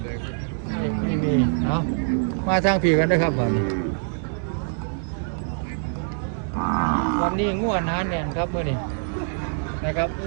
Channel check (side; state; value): left; silent; digital silence